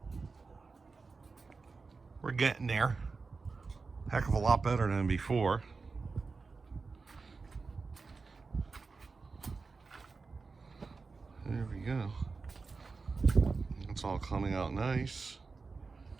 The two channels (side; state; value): left; quieter; 4.3 dB